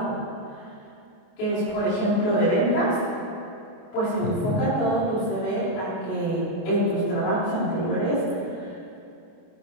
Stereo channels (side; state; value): right; late; 28 ms